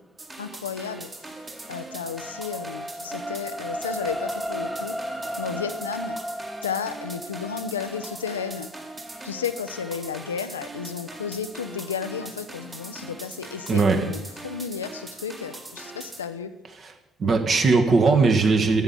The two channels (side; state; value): both; normal; correlation 0.55